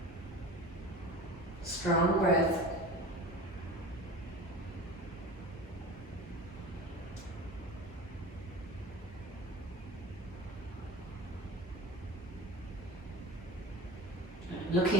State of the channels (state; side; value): normal; both; correlation 0.33